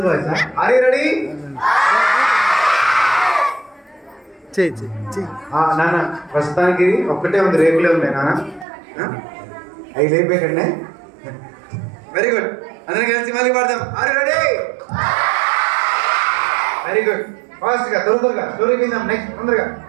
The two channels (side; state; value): left; drops out; at 8.7 s